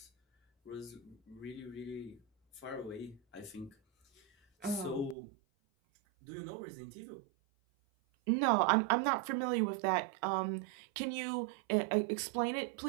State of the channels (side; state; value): left; drops out; at 5.2 s